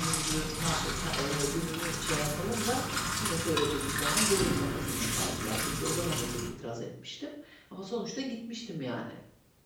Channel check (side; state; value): both; identical; correlation 1.00